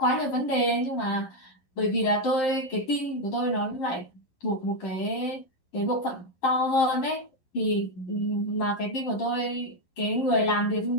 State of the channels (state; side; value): late; right; 11 ms